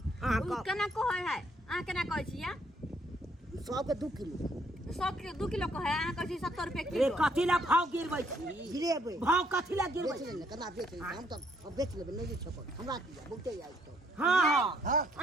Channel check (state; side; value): normal; both; correlation 0.69